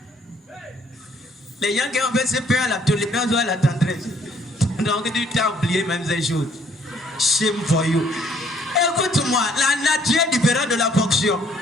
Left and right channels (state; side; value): normal; both; correlation 0.64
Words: Les gens qui ont fait ce peur à la tolérance ou à la tendresse. Donc tu t'as oublié même ces choses. Shame for you. Écoute-moi, la nature est différente de la fonction.